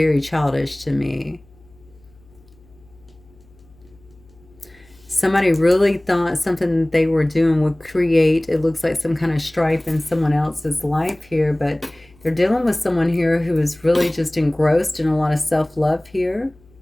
childish to me. Somebody really thought something that they were doing would create, it looks like, some kind of strife in someone else's life here, but they're dealing with someone here who is really just engrossed in a lot of self-love here.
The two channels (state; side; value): noise; left; hum, 28 dB below the sound